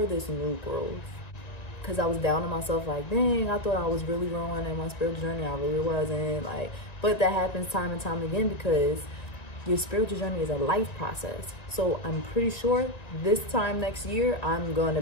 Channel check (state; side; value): late; right; 1.9 ms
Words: this new growth, because I was down on myself, like, dang, I thought I was really growing in my spiritual journey. I really wasn't. Like, but that happens time and time again, because your spiritual journey is a life process. So I'm pretty sure this time next year, I'm going